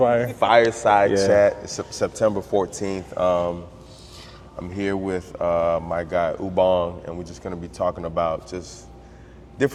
Fireside Yeah. chat. It's September 14th. I'm here with my guy Ubong, and we're just going to be talking about just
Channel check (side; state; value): both; identical; correlation 1.00